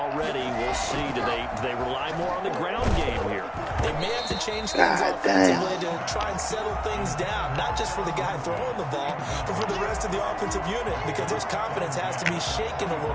we'll see. Do they rely more on the ground game here? They may have to change things offensively to try and settle things down, not just for the guy throwing the ball, but for the rest of the offensive unit, because his confidence has to be shaken a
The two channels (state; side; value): identical; both; correlation 1.00